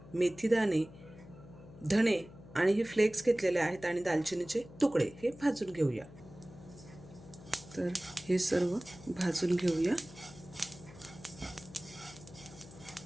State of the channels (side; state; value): left; noise; hum, 18 dB below the sound